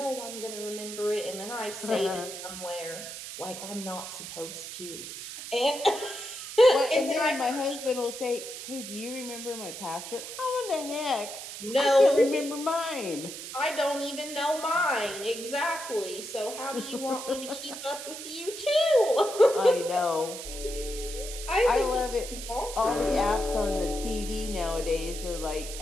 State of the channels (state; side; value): noise; right; hiss, 9 dB below the sound